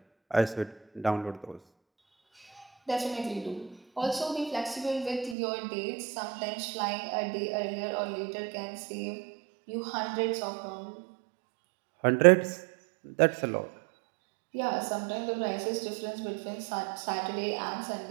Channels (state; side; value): drops out; left; at 5.4 s